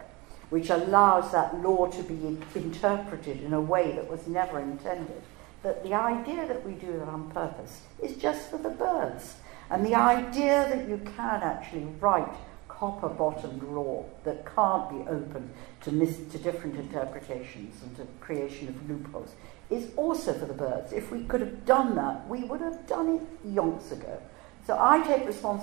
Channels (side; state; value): left; quieter; 24.6 dB